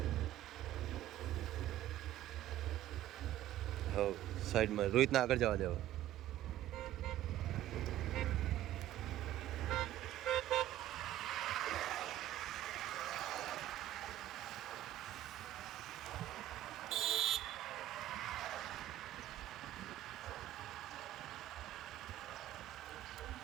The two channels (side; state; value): left; quieter; 13.4 dB